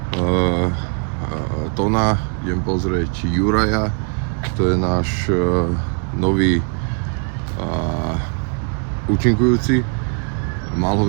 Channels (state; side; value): quieter; left; 37.5 dB